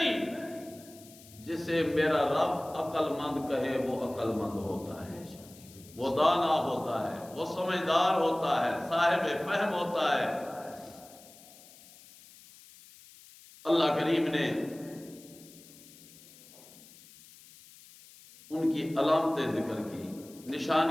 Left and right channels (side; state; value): left; noise; hiss, 22 dB below the sound